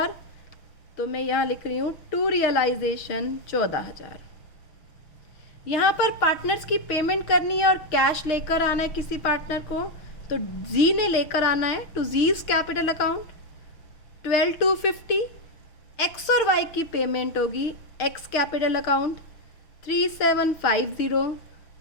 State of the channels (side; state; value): right; late; 6.2 ms